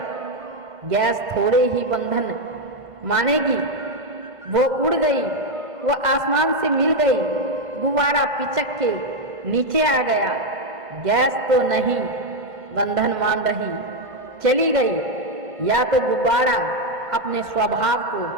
गैस थोड़े ही बंधन मानेगी। वो उड़ गई, वो आसमान से मिल गई, गुब्बारा पिचक के नीचे आ गया। गैस तो नहीं बंधन मान रही, चली गई। या तो गुब्बारा अपने स्वभाव को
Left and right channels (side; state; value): left; late; 1.5 ms